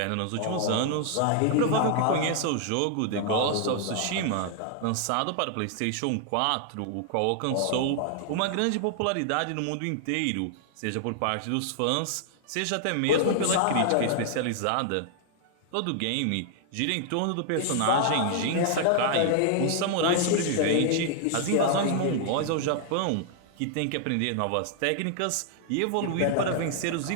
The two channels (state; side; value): different; both; correlation 0.00